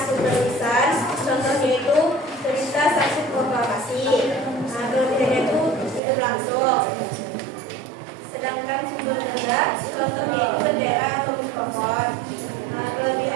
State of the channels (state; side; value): drops out; left; at 6.0 s